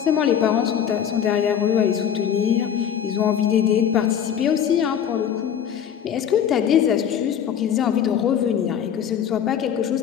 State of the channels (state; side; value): quieter; right; 8.9 dB